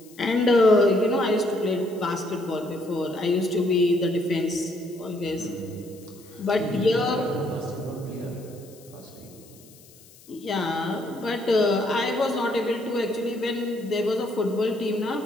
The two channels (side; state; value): left; noise; hiss, 24 dB below the sound